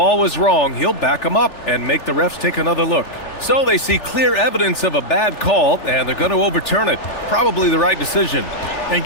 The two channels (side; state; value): right; late; 3.4 ms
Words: was wrong, he'll back them up and make the refs take another look. So they see clear evidence of a bad call, and they're going to overturn it. Probably the right decision. And